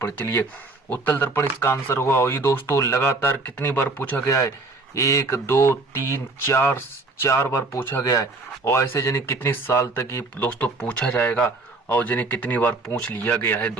चलिए उत्तल दर्पण इसका आंसर होगा। और ये दोस्तों लगातार कितनी बार पूछा गया है, 1 2 3 4 बार पूछा गया है। और ऐसे जाने कितने साल तक ये दोस्तों पूछा जाएगा और जाने कितनी बार पूछ लिया गया है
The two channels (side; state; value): left; quieter; 3.3 dB